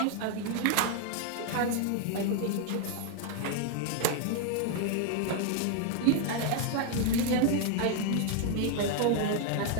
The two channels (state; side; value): different; both; correlation 0.00